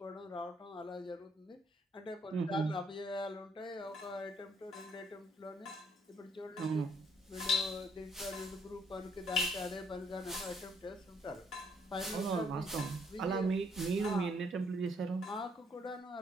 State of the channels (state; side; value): normal; both; correlation 0.67